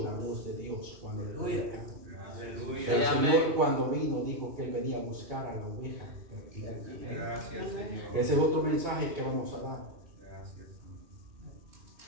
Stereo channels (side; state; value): left; late; 2.4 ms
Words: la voz de Dios cuando le trajo acá. El Señor cuando vino dijo que Él venía a buscar a la oveja perdida. Gracias, Señor. Ese es otro mensaje que vamos a dar. Gracias.